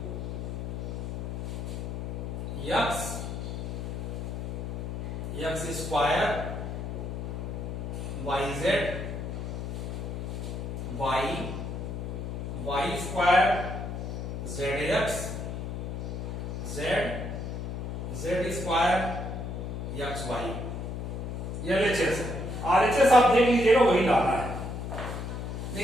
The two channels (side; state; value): left; noise; hum, 5 dB below the sound